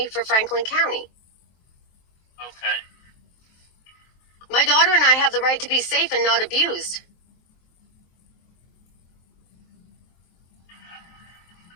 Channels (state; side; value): late; right; 23 ms